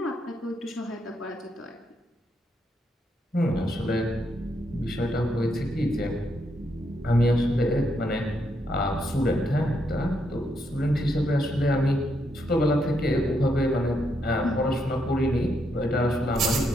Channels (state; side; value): normal; both; correlation 0.78